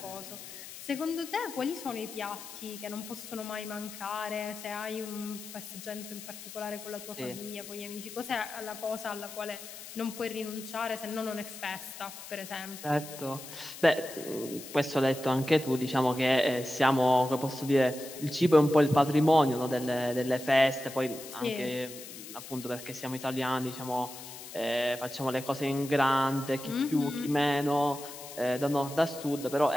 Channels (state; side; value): noise; left; hiss, 13 dB below the sound